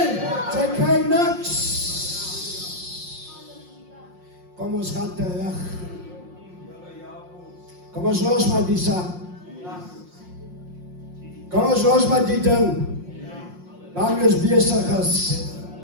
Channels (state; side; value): late; left; 5.6 ms